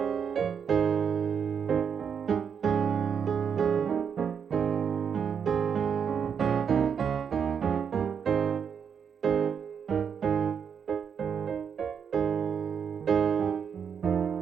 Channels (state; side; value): quieter; left; 7.2 dB